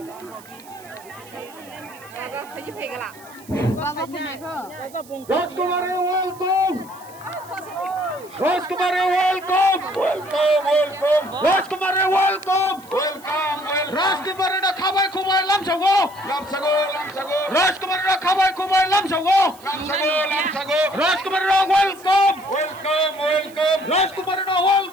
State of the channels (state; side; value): noise; right; hiss, 23 dB below the sound